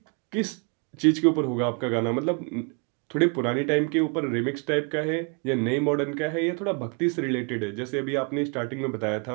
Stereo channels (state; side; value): quieter; left; 36.0 dB